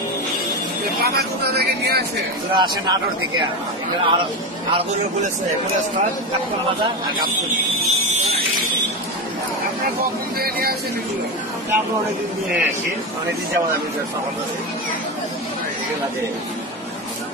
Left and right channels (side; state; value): both; normal; correlation 0.17